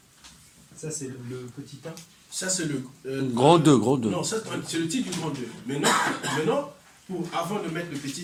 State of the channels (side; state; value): both; identical; correlation 1.00